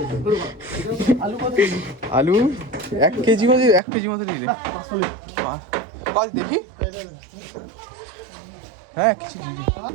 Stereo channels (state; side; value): drops out; left; at 3.8 s